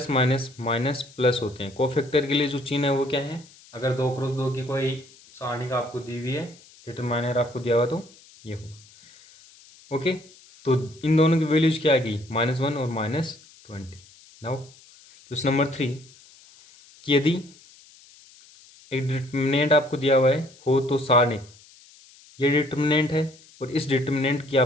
माइनस माइनस प्लस होते हैं। कोफैक्टर के लिए जो चिन्ह है वो क्या है, अगर 2x2 की कोई सारणिक आपको दी हुई है, डिटरमाइनर आपको दिया हुआ तो ये होगा। ओके, तो इन दोनों की वैल्यूज क्या आ गई -1 और -20। नाउ क्वेश्चन नंबर 3 कि यदि एक डिटरमिनेंट आपको दिया हुआ है हो तो सारणिक, ये डिटरमिनेंट है और इस डिटरमिनेंट की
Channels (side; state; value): left; noise; hiss, 25 dB below the sound